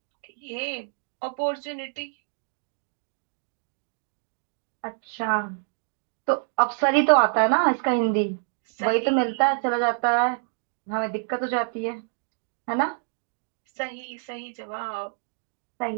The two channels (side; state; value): left; silent; digital silence